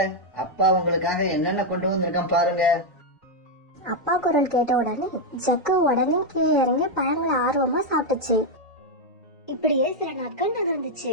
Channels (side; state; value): both; normal; correlation 0.01